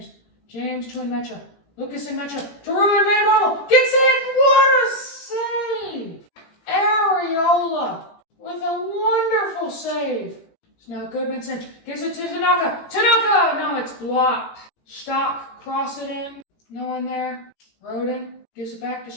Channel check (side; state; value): right; late; 18 ms